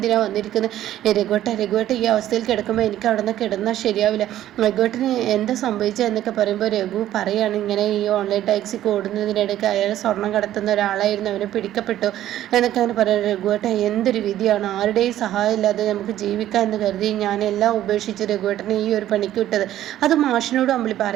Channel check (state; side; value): quieter; left; 12.8 dB